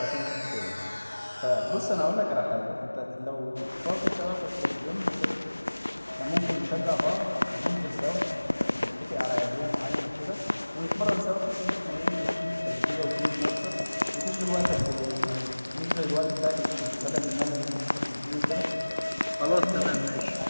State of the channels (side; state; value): both; inverted; correlation -1.00